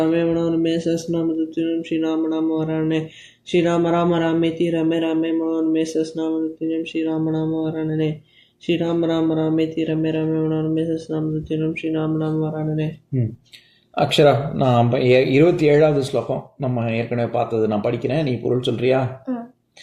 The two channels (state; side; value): identical; both; correlation 1.00